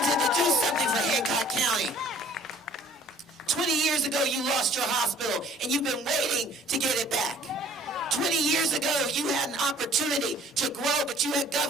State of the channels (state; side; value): normal; both; correlation 0.53